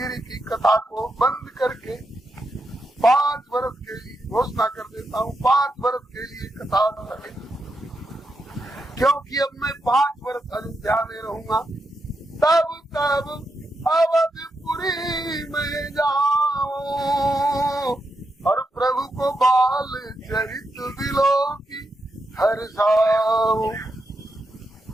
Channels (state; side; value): normal; both; correlation 0.84